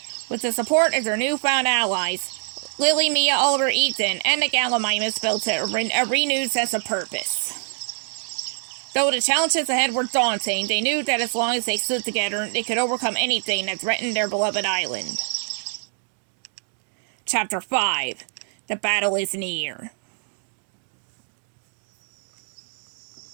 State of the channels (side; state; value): left; silent; 58 dB below the other